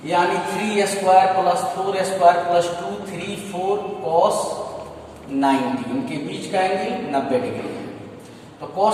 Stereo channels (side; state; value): both; identical; correlation 1.00